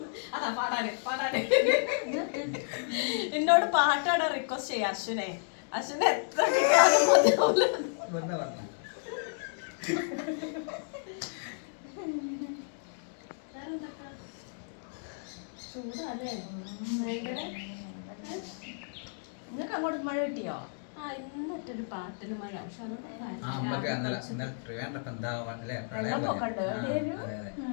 അതാ പാടാന് പാടാന് എന്നോട് പാട്ടാണ് റിക്വസ്റ്റ് ചെയ്യാം അശ്വനെ. അശ്വനെ എത്ര കിട്ടിയാലും മതിയാവൂല. ചൂടല്ലേ നിങ്ങൾക്ക് അങ്ങോട്ട് മഴ കിട്ടിയോ? ആ ഇന്നറ്റൊരു പാട്ടിന് മഴ. പക്ഷെ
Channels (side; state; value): right; silent; digital silence